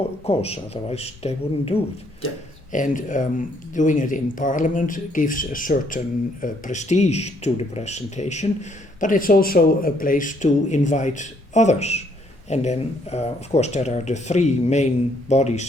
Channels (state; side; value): normal; both; correlation 0.68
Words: otherwise they wouldn't do it. Yeah. And doing it in parliament gives a certain prestige to the presentation, but it's also a place to invite others. And then, of course, there are the 3 main